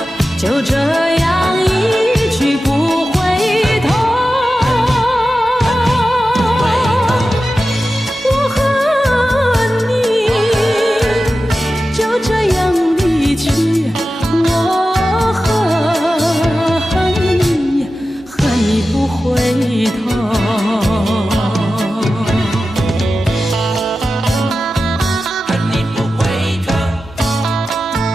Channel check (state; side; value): normal; both; correlation 0.93